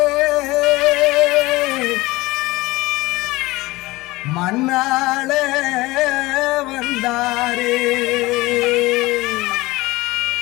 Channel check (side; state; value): right; quieter; 20.5 dB